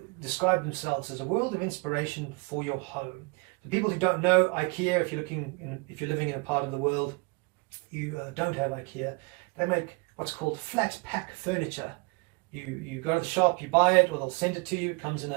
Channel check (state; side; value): quieter; left; 27.9 dB